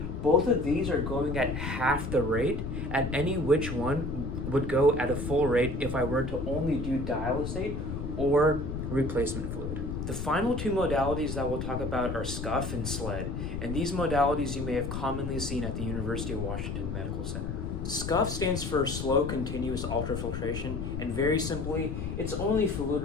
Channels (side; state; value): left; noise; rumble, 4 dB below the sound